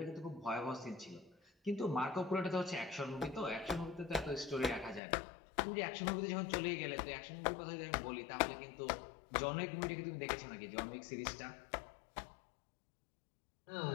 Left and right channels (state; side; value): drops out; right; at 5.0 s